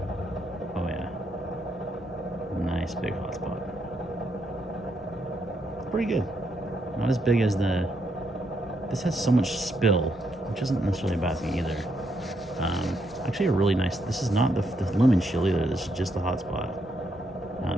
Oh yeah, nice big hotspot. Pretty good. Not as big as this has so much spill, which isn't necessarily a bad thing either. Actually a really nice, this is not the lumen shield either, this is just the hotspot.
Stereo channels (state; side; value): normal; both; correlation 0.77